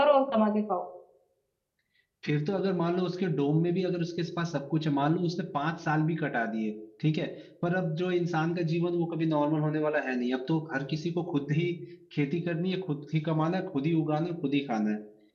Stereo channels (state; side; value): identical; both; correlation 1.00